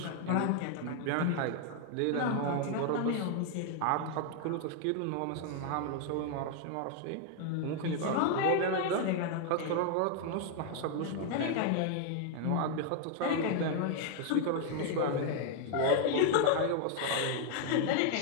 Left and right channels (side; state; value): both; different; correlation 0.00